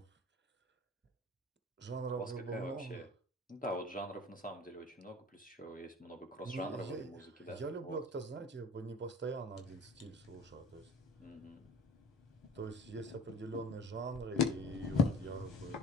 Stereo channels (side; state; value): both; normal; correlation 0.42